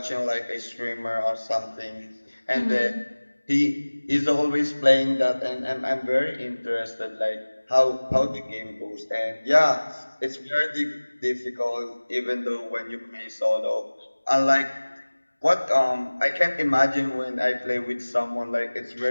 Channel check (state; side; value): inverted; both; correlation -1.00